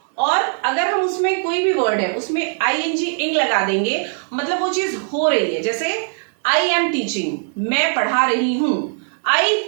और अगर हम उसमें कोई भी वर्ड है उसमें आईएनजी इंग लगा देंगे, मतलब वो चीज हो रही है. जैसे आई एम टीचिंग, मैं पढ़ा रही हूं. आई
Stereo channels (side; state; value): left; silent; 66 dB below the other